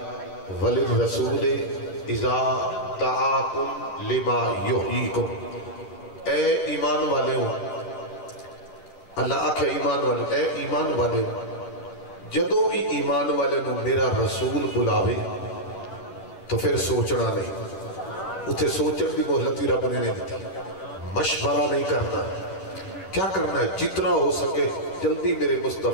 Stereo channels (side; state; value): right; late; 10 ms